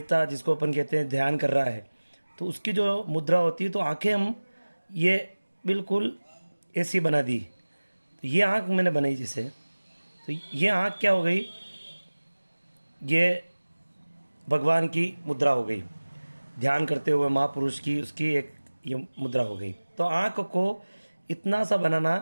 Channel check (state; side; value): inverted; both; correlation -1.00